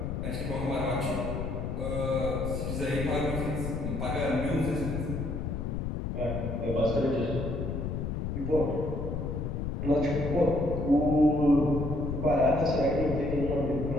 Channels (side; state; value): left; noise; rumble, 3 dB below the sound